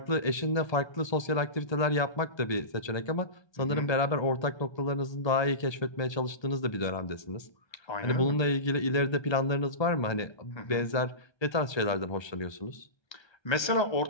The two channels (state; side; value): late; right; 1.3 ms